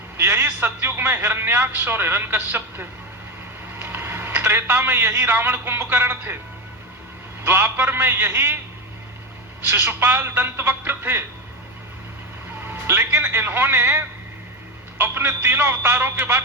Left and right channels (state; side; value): normal; both; correlation 0.16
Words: यही सतयुग में हिरण्याक्ष और हिरण्यकश्यप थे, त्रेता में यही रावण कुंभकर्ण थे, द्वापर में यही शिशुपाल दंतवक्र थे। लेकिन इन्होंने अपने तीनों अवतारों के